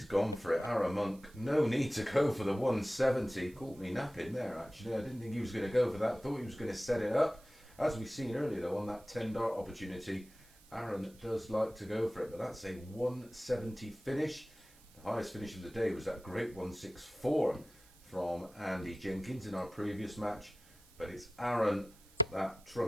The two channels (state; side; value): noise; right; hiss, 26 dB below the sound